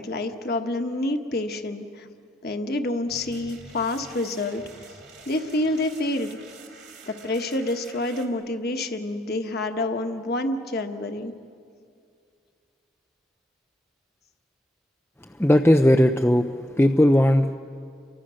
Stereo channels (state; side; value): normal; both; correlation 0.77